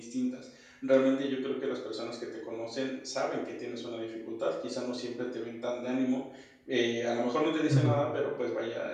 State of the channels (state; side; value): identical; both; correlation 1.00